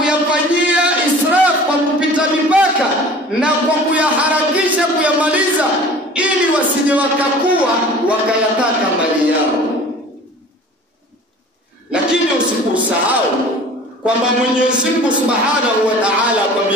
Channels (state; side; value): normal; both; correlation 0.44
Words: israf, kwa kupita mipaka na kwa kuyaharakisha kuyamaliza, ili wasije wakakuwa wakayataka mali yao. Lakini usikusahau kwamba Mwenyezi Mungu Subhanahu wa Ta'ala